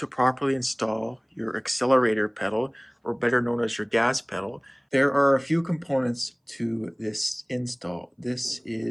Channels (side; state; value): both; identical; correlation 1.00